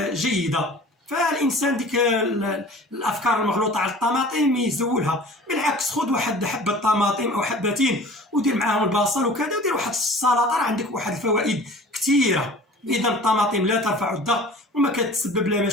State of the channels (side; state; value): both; normal; correlation 0.43